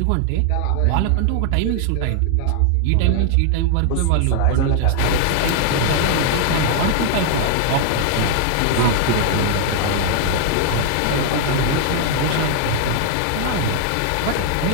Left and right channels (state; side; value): different; both; correlation 0.00